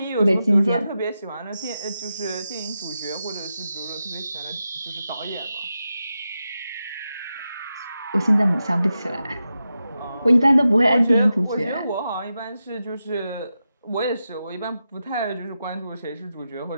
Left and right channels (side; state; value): both; inverted; correlation -0.90